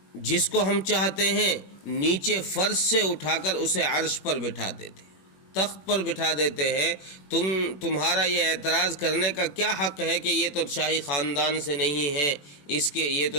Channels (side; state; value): right; late; 21 ms